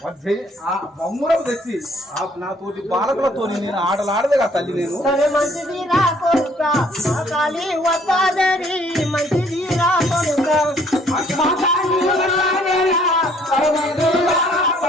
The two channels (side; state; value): both; normal; correlation 0.61